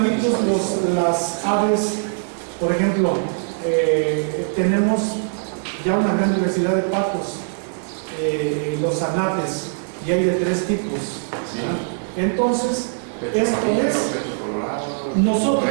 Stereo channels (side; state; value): left; silent; 65 dB below the other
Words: las aves, por ejemplo, tenemos ya una gran diversidad de patos, los anates, y hay de 3 tipos. ¿Sí? Entonces, esto es,